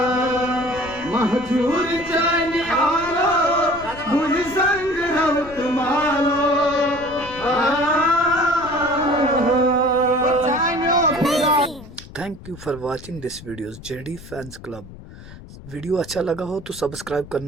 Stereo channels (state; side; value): noise; left; rumble, 17 dB below the sound